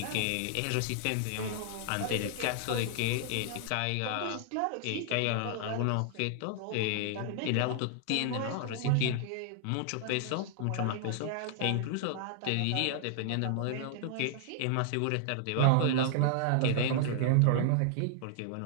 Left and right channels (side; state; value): both; different; correlation -0.01